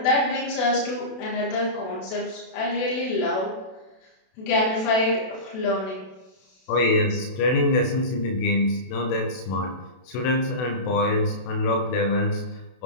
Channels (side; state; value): right; late; 32 ms